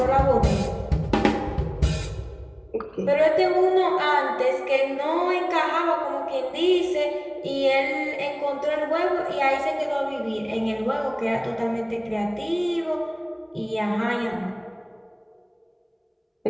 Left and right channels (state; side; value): identical; both; correlation 1.00